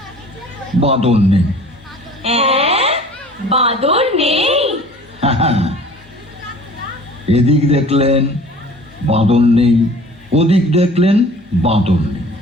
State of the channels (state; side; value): normal; both; correlation 0.47